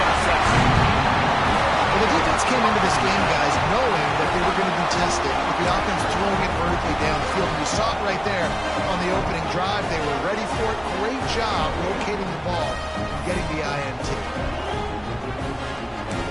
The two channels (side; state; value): both; identical; correlation 1.00